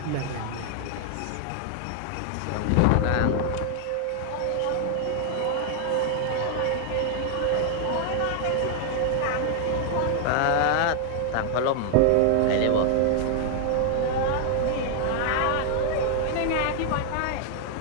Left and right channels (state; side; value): different; both; correlation 0.00